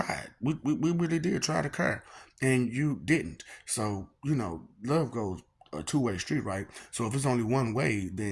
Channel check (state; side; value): identical; both; correlation 1.00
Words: We really did try to care. And you didn't. So, love goes a two-way street, right? So if it's only one way,